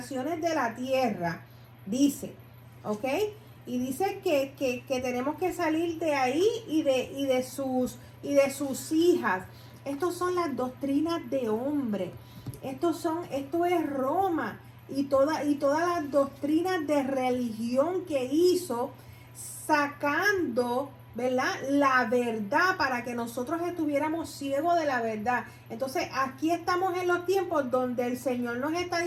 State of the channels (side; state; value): both; identical; correlation 1.00